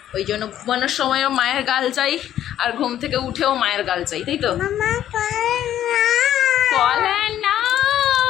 ওই জন্য ঘুমানোর সময়ও মায়ের গাল চাই, আর ঘুম থেকে উঠেও মায়ের গাল চাই, তাই তো? কলা নাও।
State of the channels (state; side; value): quieter; right; 11.4 dB